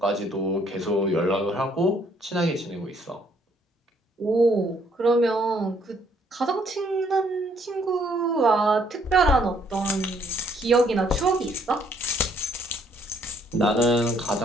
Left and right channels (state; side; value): normal; both; correlation 0.66